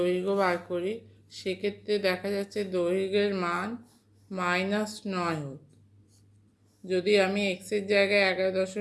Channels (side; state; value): both; identical; correlation 1.00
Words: বার করি, সেক্ষেত্রে দেখা যাচ্ছে দৈর্ঘ্যের মান -9 হোক। যদি আমি এক্সের জায়গায়